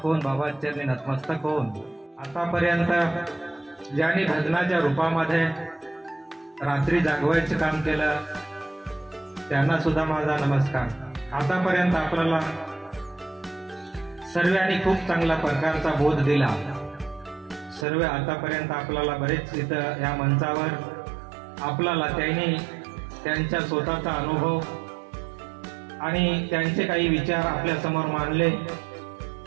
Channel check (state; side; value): drops out; left; at 17.9 s